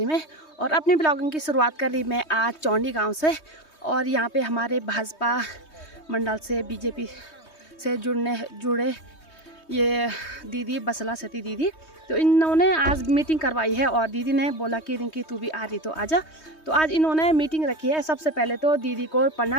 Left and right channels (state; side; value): late; right; 3.2 ms